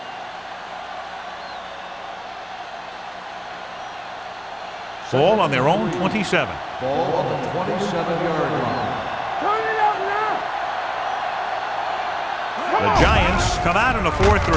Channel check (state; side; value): identical; both; correlation 1.00